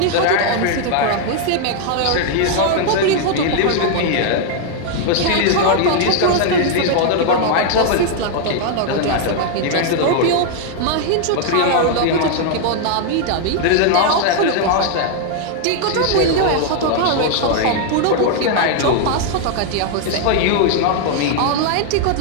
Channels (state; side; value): different; both; correlation 0.00